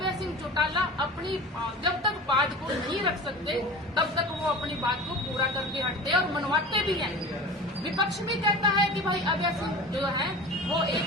सिंह चौटाला अपनी जब तक बात को नहीं रख सकते तब तक वो अपनी बात को पूरा करके हटते और मनवाते भी हैं। विपक्ष भी कहता है कि भाई अभय सिंह जो है वो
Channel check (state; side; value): normal; both; correlation 0.35